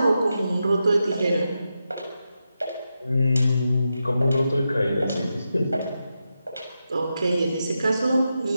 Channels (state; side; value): inverted; both; correlation -0.88